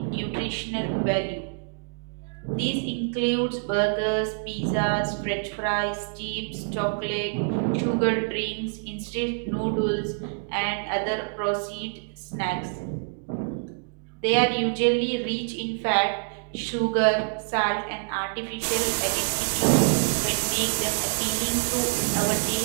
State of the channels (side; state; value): left; silent; digital silence